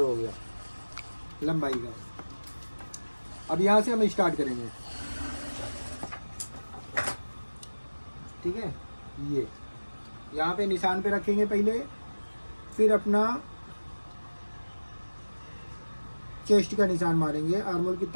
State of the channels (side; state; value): both; inverted; correlation -1.00